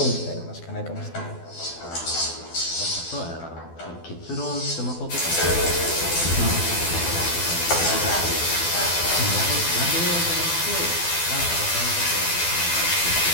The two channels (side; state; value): right; late; 12 ms